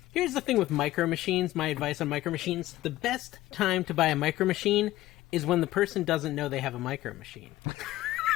here's the thing with Micro Machines, my advice on Micro Machines. The best time to buy a Micro Machine is when the person doesn't know they have a Micro Machine.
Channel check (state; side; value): quieter; right; 16.0 dB